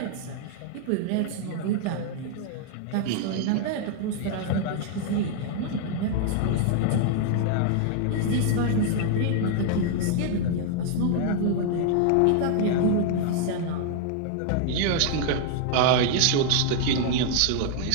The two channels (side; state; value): both; different; correlation 0.00